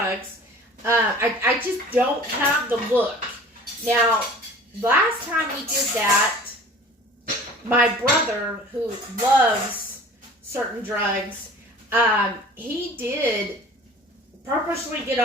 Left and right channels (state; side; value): normal; both; correlation 0.45